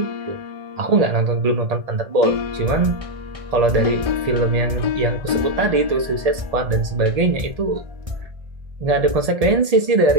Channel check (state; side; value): late; left; 1.8 ms